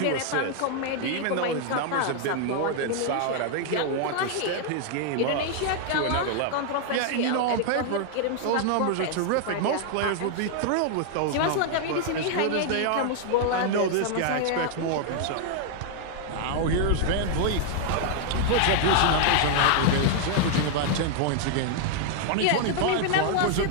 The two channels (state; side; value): different; both; correlation 0.00